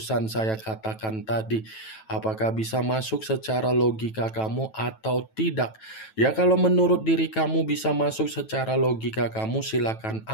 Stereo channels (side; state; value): right; late; 9.1 ms